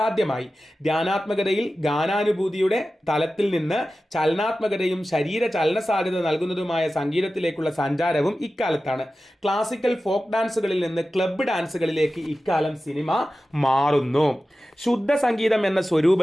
ധ്യാനാത്മകതയിൽ ഗാനാനുഭൂതിയുടെ തലത്തിൽ നിന്ന് ചലനാത്മകതയും ശരീര ചലന സാധ്യത നൽകുന്നതുമായ സംഗീതത്തിലേക്കുള്ള സഞ്ചാരവും ഇക്കാലത്താണ്. ക്ലാസിക്കൽ ഫോക്ക് ഡാൻസുകളിൽ നിന്ന് ക്ലബ്ബ് ഡാൻസുകളിലേക്ക് ഇക്കാലം സിനിമ മാറുന്നു. ശുദ്ധ സംഗീതം എന്ന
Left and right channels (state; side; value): normal; both; correlation 0.94